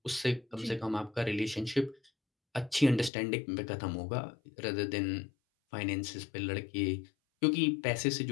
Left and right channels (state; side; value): drops out; right; at 3.1 s